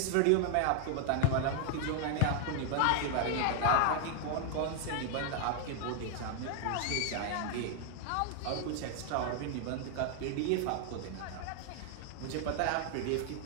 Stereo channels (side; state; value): both; different; correlation 0.00